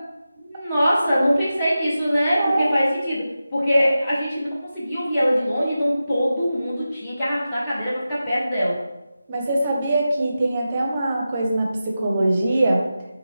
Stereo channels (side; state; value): both; inverted; correlation -0.92